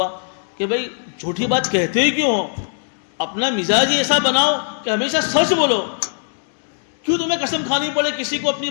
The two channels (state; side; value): silent; right; digital silence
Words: کہ بھائی جھوٹی بات کہتے ہی کیوں ہو؟ اپنا مزاج ہی ایسا بناؤ کہ ہمیشہ سچ بولو۔ کیوں تمہیں قسم کھانی پڑے کسی کو اپنی